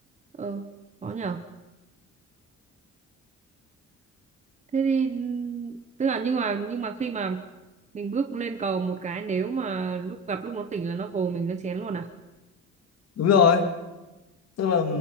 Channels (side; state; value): both; normal; correlation 0.24